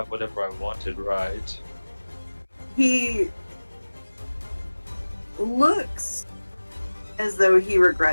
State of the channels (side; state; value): both; inverted; correlation -1.00